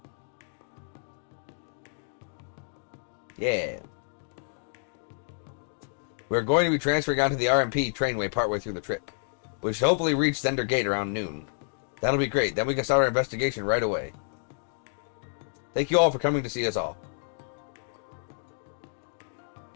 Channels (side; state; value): right; silent; digital silence